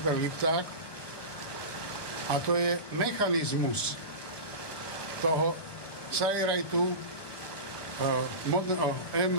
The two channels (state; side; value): late; right; 1.2 ms